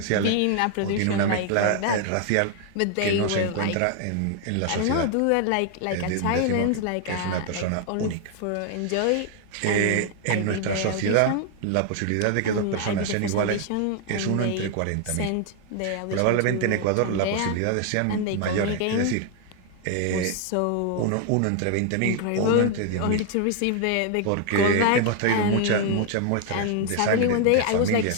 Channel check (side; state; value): both; different; correlation 0.00